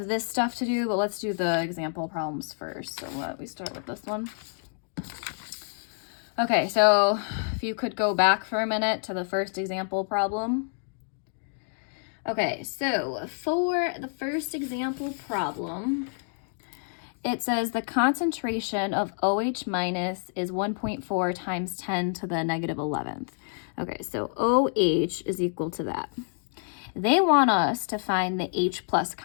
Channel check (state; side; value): silent; right; 59 dB below the other